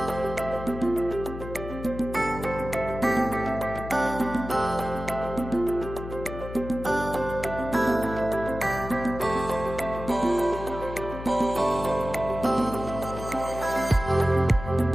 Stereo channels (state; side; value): noise; left; hum, 10 dB below the sound